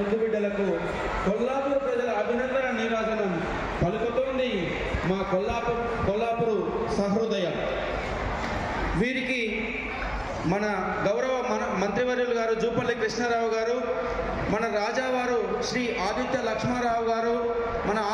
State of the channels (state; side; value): identical; both; correlation 1.00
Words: బిడ్డలకు కొల్లాపూర్ ప్రజల అభినందన నీరాజనం పలుకుతోంది మా కొల్లాపూరు సహృదయం. వీరికి మన గౌరవ మంత్రివర్యులు గారు జూపల్లి కృష్ణారావు గారు, మన రాజావారు శ్రీ ఆదిత్య లక్ష్మారావు గారు, మన